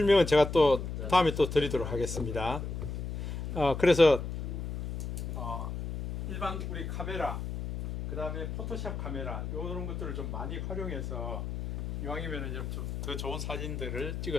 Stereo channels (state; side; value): noise; left; hum, 5 dB below the sound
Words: 제가 또 다음에 또 드리도록 하겠습니다. 그래서 일반 우리 카메라, 그 다음에 포토샵 카메라 이런 것들을 좀 많이 활용해서 이왕이면 좀 더 좋은 사진들을